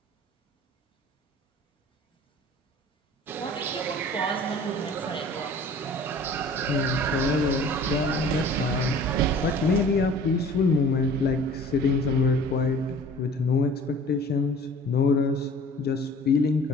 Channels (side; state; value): both; normal; correlation 0.46